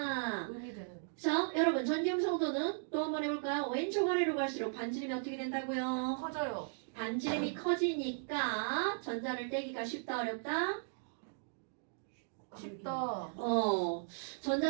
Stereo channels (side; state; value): left; silent; digital silence